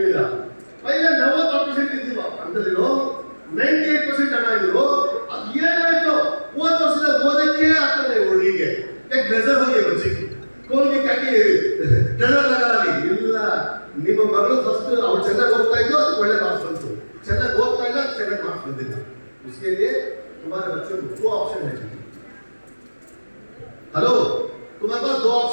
मिला। पहले 90% ಇದ್ದೀವಿ ಅಂತಲಿರೋ 98% ಹಣ ಇದ್ರು, ಅದು ಏನಾಯ್ತು ಒಂದು ವರ್ಷದ ಓದಕ್ಕೆ ಆಗ್ತದೆ ಹುಡುಗಿಗೆ, ಯಾಕೆ ನಜರ್ ಹೋಗಿ ಬಚ್ಚಿ ಕೋಲ್ಗೆ ಕಾಕಿ ನಜರ್ ಲಗಾಲಿ ಇಲ್ಲ, ನಿಮ್ಮ ಮಗಳು ಫಸ್ಟ್ ಅವ್ರು ಚೆನ್ನಾಗಿ ಓದ್ತಾ ಇದ್ದು ಅದಕ್ಕೆ ಒಳ್ಳೆ ಮಾರ್ಕ್ಸ್ ಬಂತು, ಚೆನ್ನಾಗಿ ಓದ್ತಾ ಇಲ್ಲ ಚೆನ್ನಾಗಿ ಮಾರ್ಕ್ಸ್ ಬಂದಿಲ್ಲ, उसके लिए तुम्हारे बच्चों को 2 ऑप्शन है, हेलो, तुम्हारे पास दो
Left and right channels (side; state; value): both; inverted; correlation -1.00